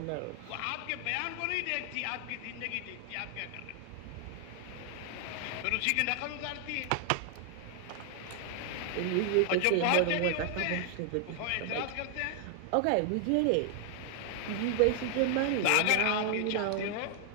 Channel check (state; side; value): different; both; correlation 0.00